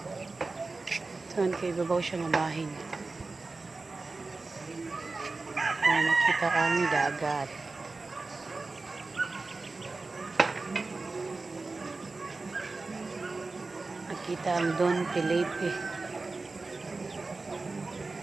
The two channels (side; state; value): left; quieter; 3.7 dB